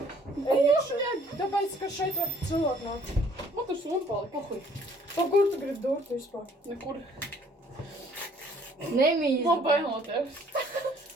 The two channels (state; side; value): normal; both; correlation 0.59